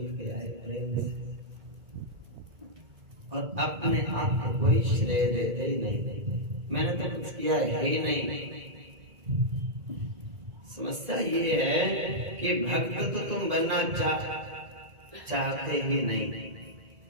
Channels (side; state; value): left; late; 1.9 ms